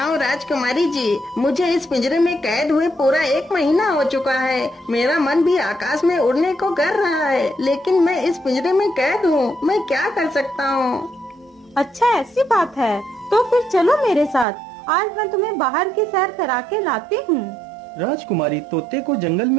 राजकुमारी जी, मुझे इस पिंजरे में कैद हुए पूरा 1 महीना हो चुका है। मेरा मन भी आकाश में उड़ने को कर रहा है, लेकिन मैं इस पिंजरे में कैद हूँ। मैं क्या कर सकता हूँ? अच्छा ऐसी बात है, तो फिर चलो मेरे साथ। आज मैं तुम्हें बाहर की सैर करा के लाती हूँ। राजकुमारी तोते को जंगल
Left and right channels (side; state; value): left; drops out; at 14.5 s